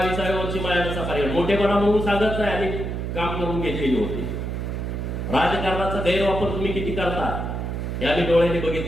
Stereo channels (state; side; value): noise; right; hum, 3 dB below the sound